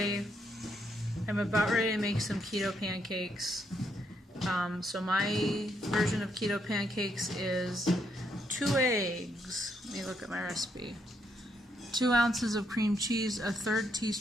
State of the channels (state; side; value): normal; both; correlation 0.76